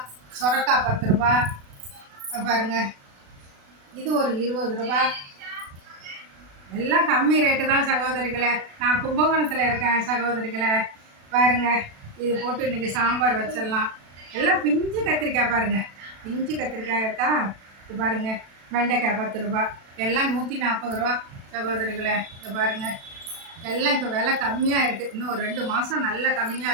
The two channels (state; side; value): late; left; 36 ms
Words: சொரக்காய் 10 ரூபா. பாருங்க, இது ஒரு 20 ரூபா. எல்லாம் கம்மி ரேட்டு தான் சகோதரிகளை. நான் கும்பகோணத்தில் இருக்கேன் சகோதரிகளை. பாருங்க, இது போட்டு இன்றைக்கி சாம்பார் வச்சிடலாம். எல்லாம் பிஞ்சு கத்திரிக்காய் பாருங்க, பிஞ்சு கத்திரிக்காய் இருக்கா. இது பாருங்க, வெண்டைக்காய் 10 ரூபா. எல்லாம் 140 ரூபா சகோதரிகளை. இது பாருங்க, எல்லாம் இப்போ விலை கம்மியாக இருக்குது. இன்னும் ஒரு 2 மாதம் நல்ல